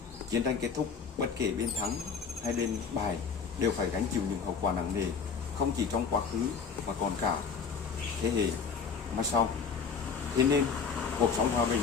Chiến tranh kết thúc, bất kể bên thắng hay bên bại đều phải gánh chịu những hậu quả nặng nề, không chỉ trong quá khứ mà còn cả thế hệ mai sau. Thế nên, cuộc sống hòa bình,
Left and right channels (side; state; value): right; quieter; 5.9 dB